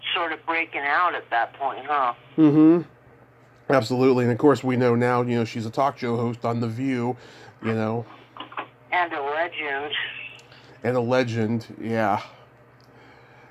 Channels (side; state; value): both; identical; correlation 1.00